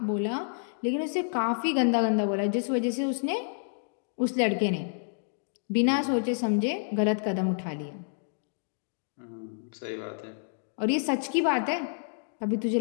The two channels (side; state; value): right; silent; digital silence